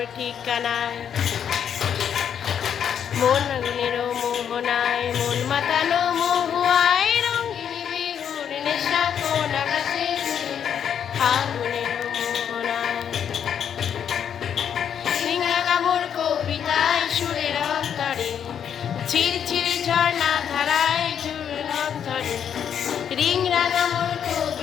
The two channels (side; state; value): right; quieter; 8.5 dB